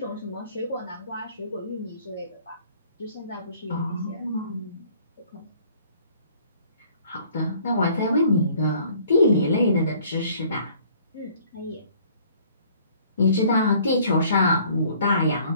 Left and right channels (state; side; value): inverted; both; correlation -0.57